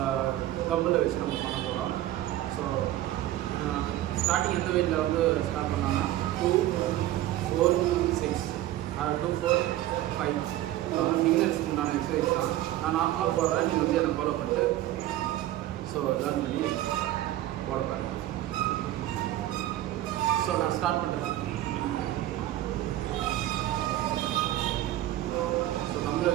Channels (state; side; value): quieter; left; 14.4 dB